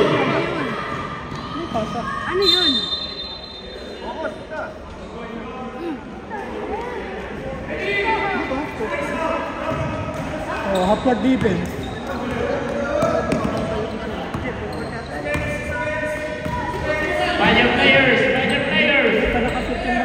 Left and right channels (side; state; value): both; identical; correlation 1.00